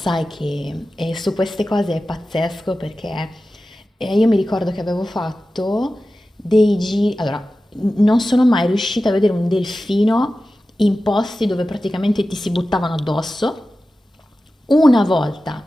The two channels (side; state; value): both; normal; correlation 0.94